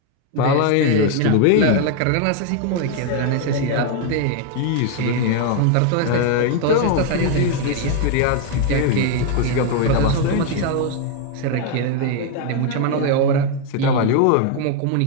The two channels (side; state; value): both; different; correlation 0.01